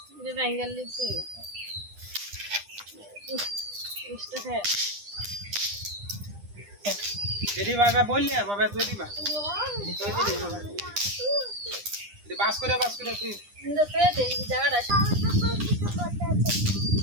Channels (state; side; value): late; left; 9.9 ms